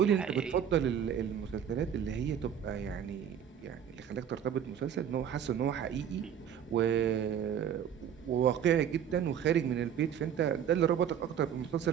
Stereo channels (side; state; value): left; quieter; 8.8 dB